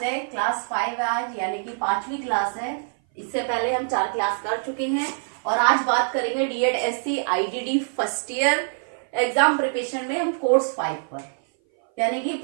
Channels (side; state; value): left; silent; 58 dB below the other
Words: है क्लास 5 है आज, यानी कि 5वीं क्लास है। इससे पहले हम 4 क्लास कर चुके हैं और आज बात करेंगे DED-SC IDD first year exam preparation में हम कोर्स 5 पर, यानी कि